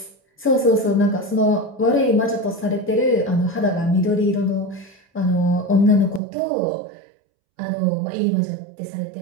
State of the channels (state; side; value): drops out; left; at 6.2 s